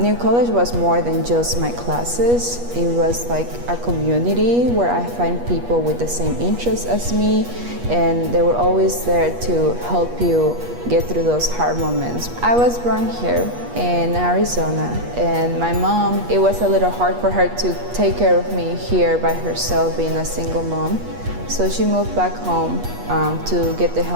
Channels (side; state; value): left; late; 8.3 ms